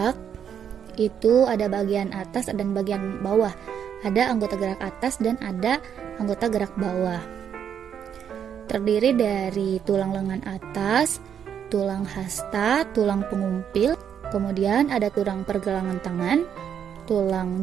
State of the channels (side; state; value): left; quieter; 8.4 dB